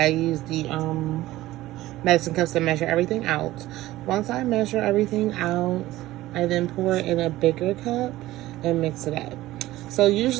use the medicine cups to measure everything out. Once I measure everything out, I then pour it in a bigger cup and mix it up. So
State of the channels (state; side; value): quieter; left; 16.5 dB